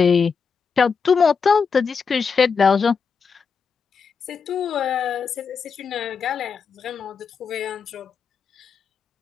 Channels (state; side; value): quieter; right; 5.7 dB